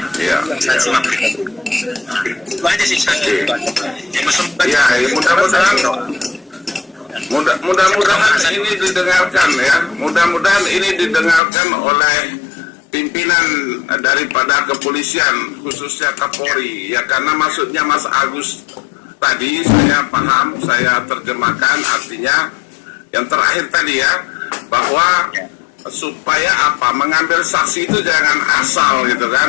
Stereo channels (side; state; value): right; drops out; at 11.4 s